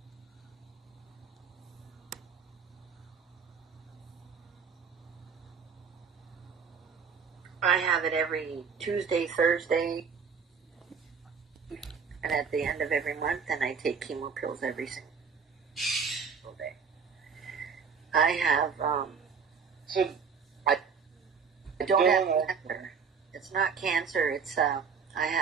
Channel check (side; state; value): left; quieter; 6.0 dB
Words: I have it every Tuesday, Thursday, and at the end of every month, and I take chemo pills every single day. I have, So, I don't have cancer. It's not cancer, it's, I